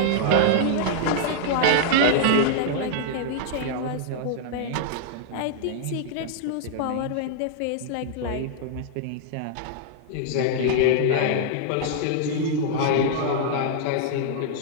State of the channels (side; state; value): both; different; correlation -0.01